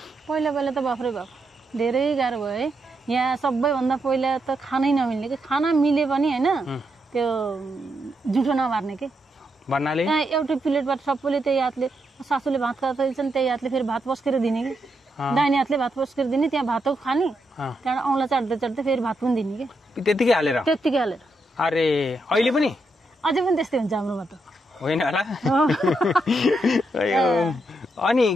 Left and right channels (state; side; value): normal; both; correlation 0.82